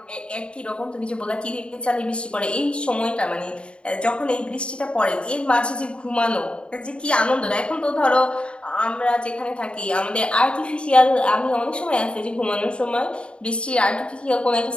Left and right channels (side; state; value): right; late; 0.055 ms